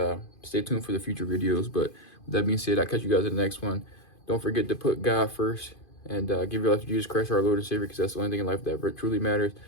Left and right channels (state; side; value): late; right; 2.5 ms